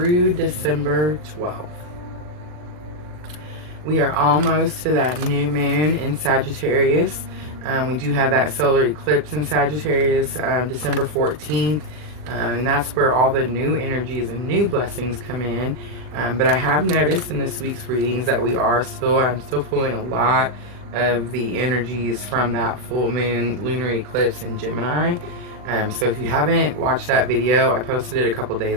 December 12th. We are almost to that new moon in Sagittarius. We do have that solar eclipse in Sagittarius December 14th. And that's where all the new energies and new blessings come in. But I have noticed in this week's readings that I'm still pulling a lot of the energies from that full moon lunar eclipse in Gemini. So if you haven't watched that video, I posted it a couple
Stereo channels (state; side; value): late; left; 39 ms